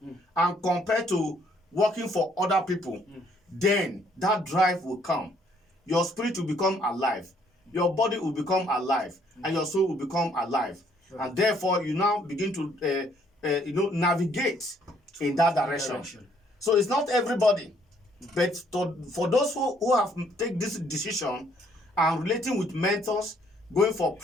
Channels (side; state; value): both; normal; correlation 0.66